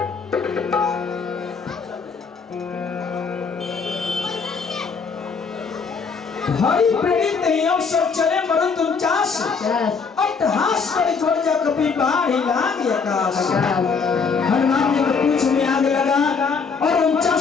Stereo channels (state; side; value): quieter; right; 5.3 dB